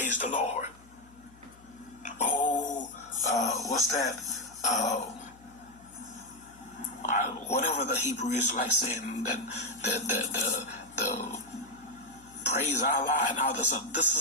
the Lord. Oh, what's that? Whatever the Hebrew is like saying, that the praise Allah and all this. This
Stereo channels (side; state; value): left; noise; hum, 25 dB below the sound